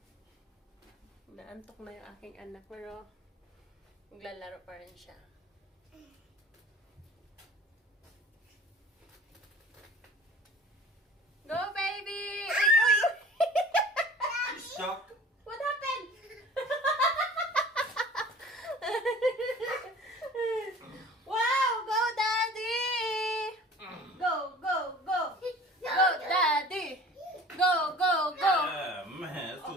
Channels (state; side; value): normal; both; correlation 0.45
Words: Naantok na yung aking anak, pero maglalaro pa rin siya. Go, baby! You stuck? What happened? Wow! Go, Daddy! Go, go, go! Go, Daddy! Go, go, go! Yeah, man, it's